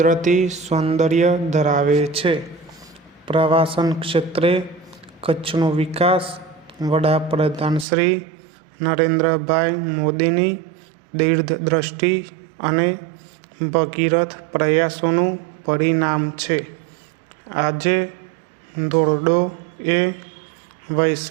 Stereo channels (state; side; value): drops out; left; at 7.9 s